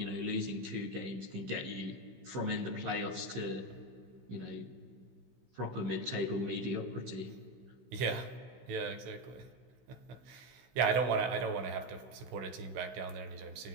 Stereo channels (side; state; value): left; late; 16 ms